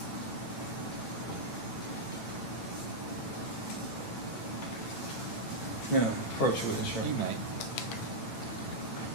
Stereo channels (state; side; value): late; right; 9.0 ms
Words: Yeah, approach with this, right? You may.